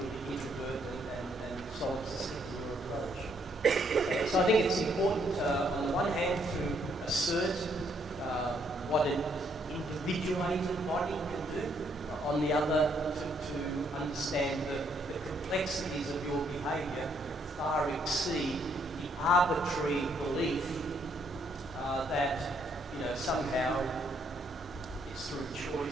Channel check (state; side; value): normal; both; correlation 0.71